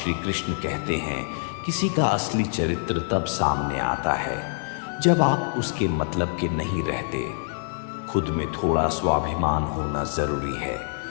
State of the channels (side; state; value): right; silent; digital silence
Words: कृष्ण कहते हैं, किसी का असली चरित्र तब सामने आता है जब आप उसके मतलब के नहीं रहते। खुद में थोड़ा स्वाभिमान होना जरूरी है,